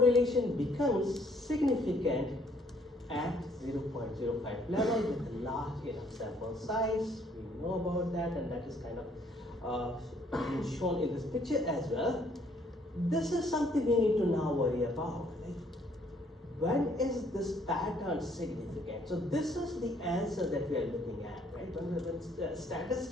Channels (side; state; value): both; normal; correlation 0.64